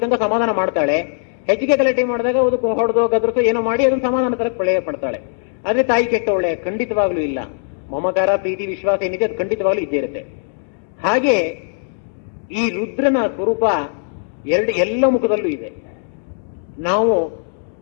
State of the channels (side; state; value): right; silent; 63 dB below the other